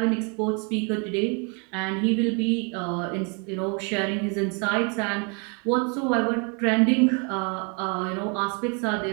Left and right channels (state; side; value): quieter; left; 34.7 dB